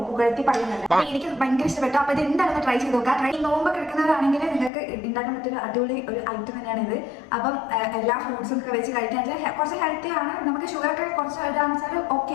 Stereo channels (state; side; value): drops out; right; at 4.7 s